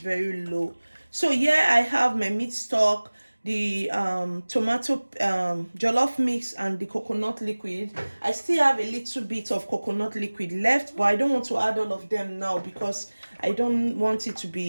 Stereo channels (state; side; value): inverted; both; correlation -1.00